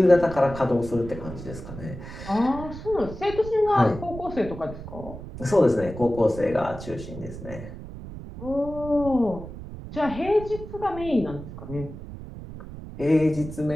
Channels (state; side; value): noise; right; rumble, 12 dB below the sound